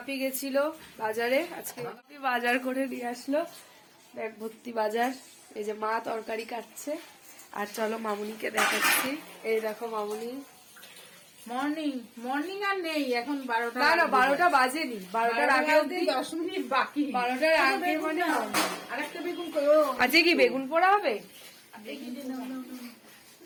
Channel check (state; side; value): identical; both; correlation 1.00